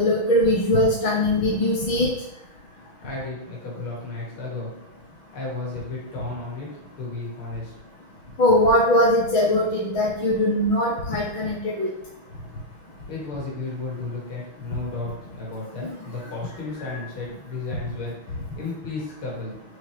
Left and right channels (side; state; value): right; late; 6.2 ms